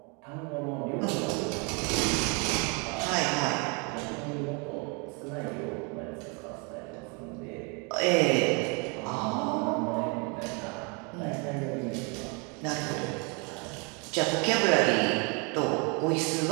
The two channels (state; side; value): quieter; left; 32.7 dB